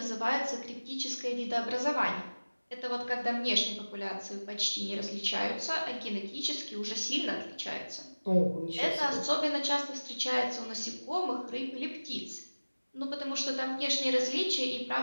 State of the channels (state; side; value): inverted; both; correlation -1.00